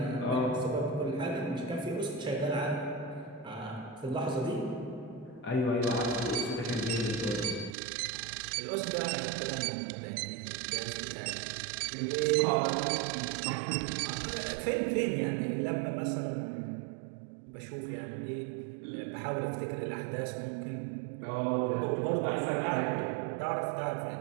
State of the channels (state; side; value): drops out; left; at 7.8 s